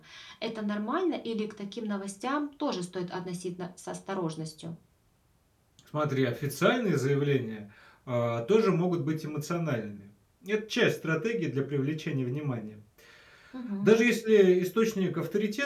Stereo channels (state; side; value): identical; both; correlation 1.00